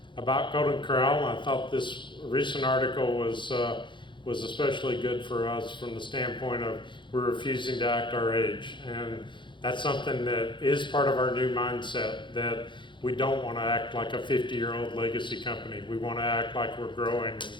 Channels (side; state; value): right; late; 0.23 ms